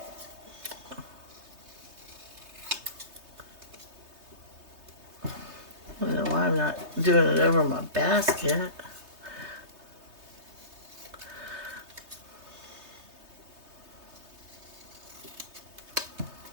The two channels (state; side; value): late; left; 3.2 ms